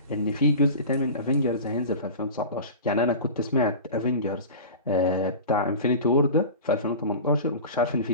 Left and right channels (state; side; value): inverted; both; correlation -0.33